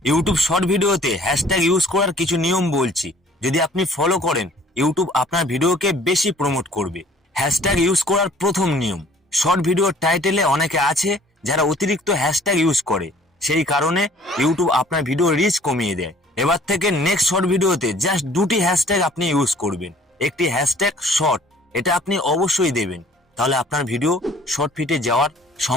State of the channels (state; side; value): normal; both; correlation 0.54